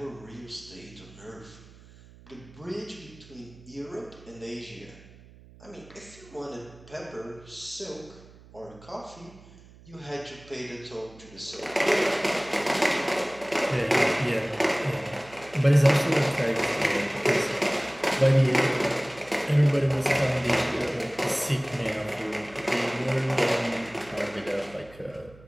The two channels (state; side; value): noise; right; hum, 22 dB below the sound